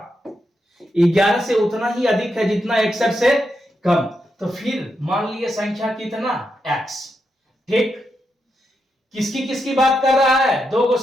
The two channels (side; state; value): both; normal; correlation 0.84